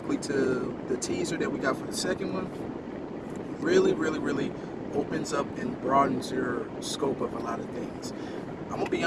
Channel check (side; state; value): both; identical; correlation 1.00